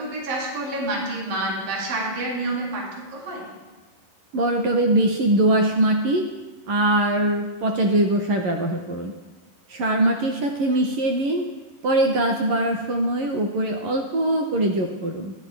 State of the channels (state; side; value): late; left; 11 ms